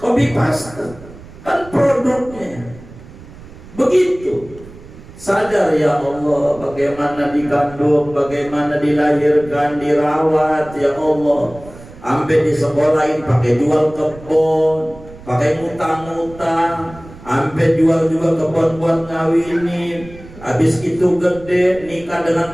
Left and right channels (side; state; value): right; noise; rumble, 18 dB below the sound